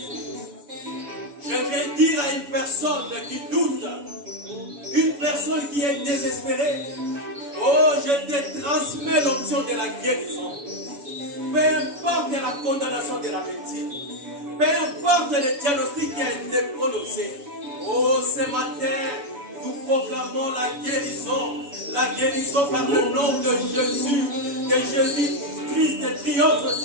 Je vais dire à une personne qui doute, une personne qui est désespérée, oh, je te transmets l'option de la guérison. Peu importe la condamnation de la médecine, peu importe le diagnostic qui a été prononcé, oh, ce matin, nous proclamons la guérison par le nom de Jésus, que Jésus-Christ triomphe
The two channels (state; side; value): late; left; 7.0 ms